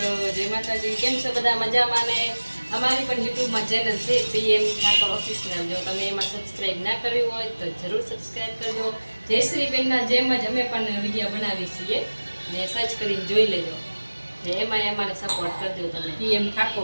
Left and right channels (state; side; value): inverted; both; correlation -1.00